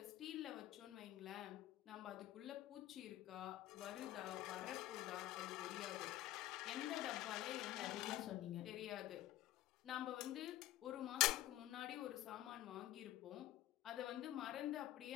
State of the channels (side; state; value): right; quieter; 14.6 dB